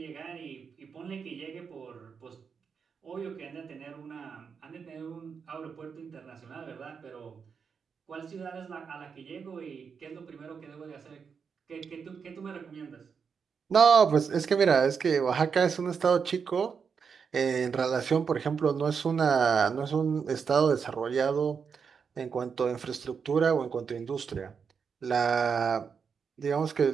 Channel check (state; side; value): quieter; left; 6.1 dB